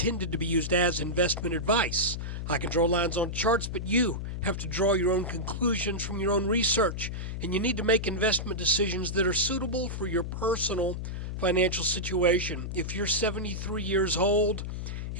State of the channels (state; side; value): noise; left; hum, 5 dB below the sound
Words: to be used as investment advice. I can draw lines on charts, but you have to draw your own conclusions from your own research. And you need to make investment decisions that are suitable for your personal financial situation. If you're 73 years old